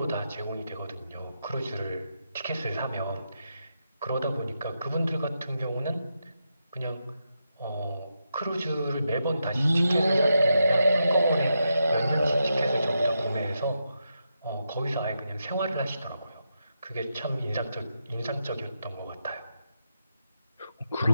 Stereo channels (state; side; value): inverted; both; correlation -0.85